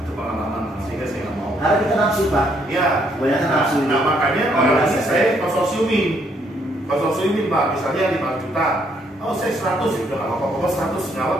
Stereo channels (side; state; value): both; normal; correlation 0.70